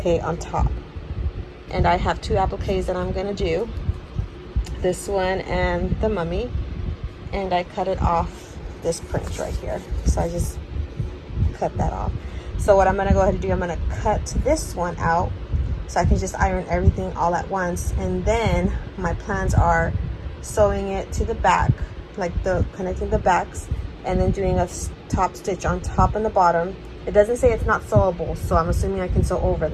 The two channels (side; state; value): both; identical; correlation 1.00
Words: on top. And I have two appliques that I'm gonna do, this one and the mummy, and I cut it off this print right here. So I just cut that off. So what I'm gonna go ahead and do, I'm gonna cut this one out so I can just iron everything all at once. And then my plans are sewing it to the back, like connecting the backs, and then doing a top stitch on top and the bottom. It doesn't say it's not sewable, so I'm assuming I can sew over